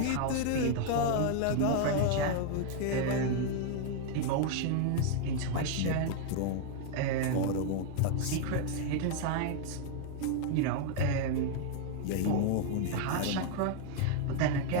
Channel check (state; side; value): different; both; correlation 0.00